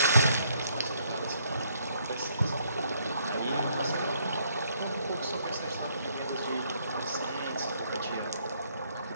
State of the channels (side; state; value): both; inverted; correlation -0.69